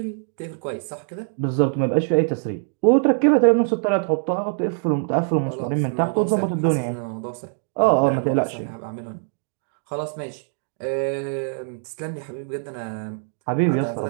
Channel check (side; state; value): left; silent; digital silence